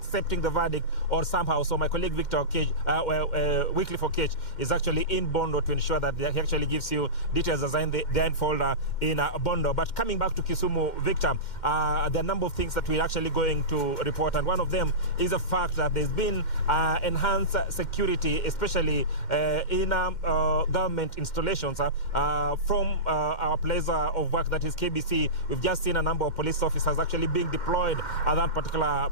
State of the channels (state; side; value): late; right; 2.1 ms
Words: the verdict, or somehow. So my colleague Victor Okech, Wycliffe Okech, is actually in Bondo to ensure that he actually gives you details as in the unfold in Bondo. But coming back to Kisumu, Victor, there are a number of things that we're actually going to report, and one of them is the fact that there's been enhanced security, especially in government installations from our place of work, that is KBC. We've just seen a number of police officers actually being deployed at that